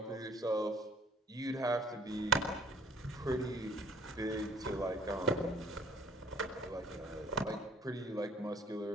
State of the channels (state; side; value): normal; both; correlation 0.57